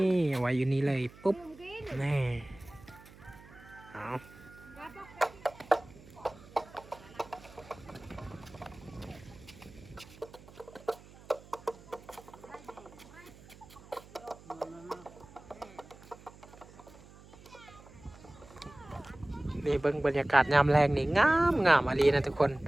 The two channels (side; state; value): right; noise; hum, 21 dB below the sound